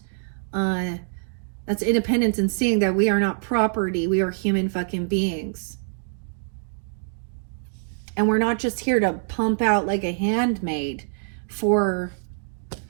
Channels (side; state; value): left; silent; digital silence